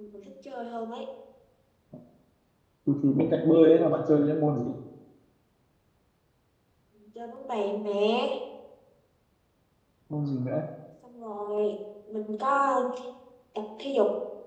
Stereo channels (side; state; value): both; identical; correlation 1.00